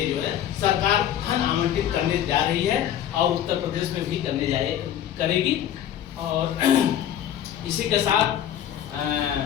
जो है सरकार धन आवंटित करने जा रही है, और उत्तर प्रदेश में भी करेगी। और इसी के साथ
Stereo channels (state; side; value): quieter; right; 10.7 dB